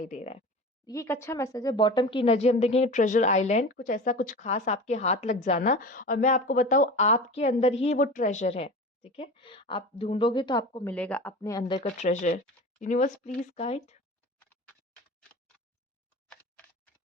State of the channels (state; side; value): normal; both; correlation 0.33